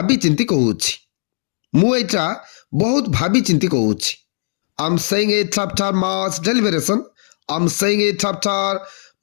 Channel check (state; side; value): silent; right; digital silence